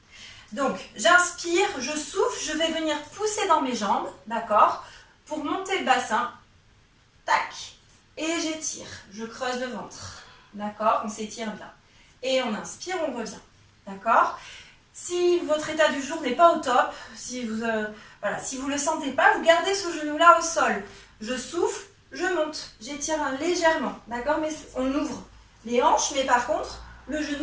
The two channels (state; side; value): identical; both; correlation 1.00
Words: Donc j'inspire, je souffle, je vais venir pousser dans mes jambes, d'accord? Pour monter le bassin, tac, et j'étire, je creuse le ventre, d'accord? On s'étire bien. Et on inspire, on revient, d'accord? Si votre état du jour n'est pas au top, si vous ne le sentez pas, vous gardez ce genou-là au sol. Je souffle, je monte, j'étire légèrement, d'accord? Mais on ouvre les hanches, mais par contre, le